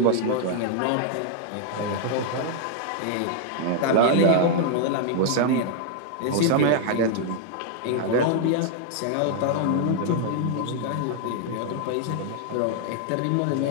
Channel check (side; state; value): both; different; correlation 0.00